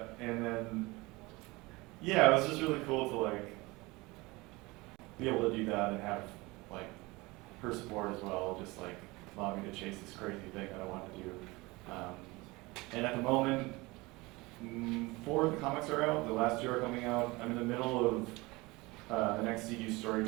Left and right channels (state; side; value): quieter; left; 23.0 dB